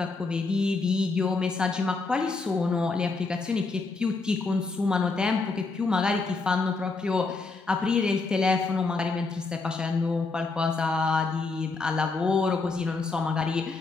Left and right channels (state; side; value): quieter; right; 3.9 dB